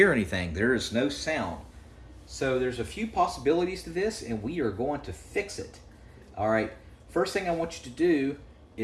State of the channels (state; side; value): identical; both; correlation 1.00